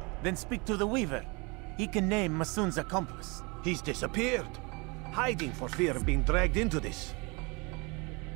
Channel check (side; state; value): left; quieter; 28.6 dB